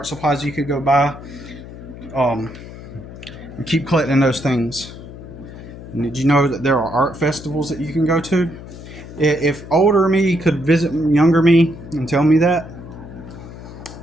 supplies you could go buy. And keep collecting those things. And did you know that there are art festivals that you can go to? If older me could visit younger me and tell me that,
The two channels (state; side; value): noise; left; hum, 14 dB below the sound